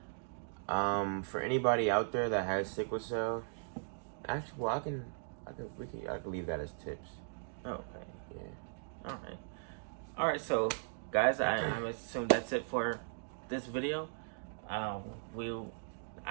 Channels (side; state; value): left; silent; digital silence